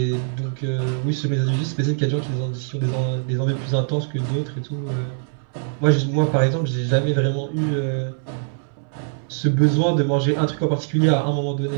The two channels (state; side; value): silent; left; 64 dB below the other